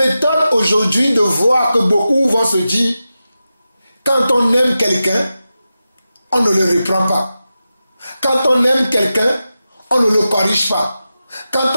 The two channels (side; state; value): both; inverted; correlation -0.92